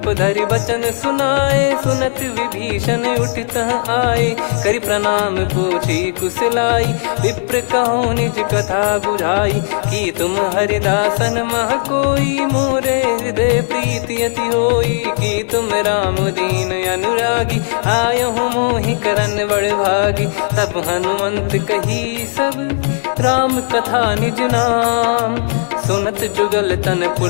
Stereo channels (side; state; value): right; silent; digital silence